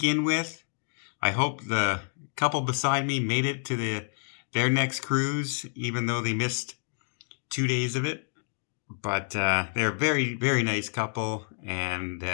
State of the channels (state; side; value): silent; right; digital silence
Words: with. I hope the couple beside me made it to their next cruise, even though they missed 2 days of it. But they're a very, very nice couple, and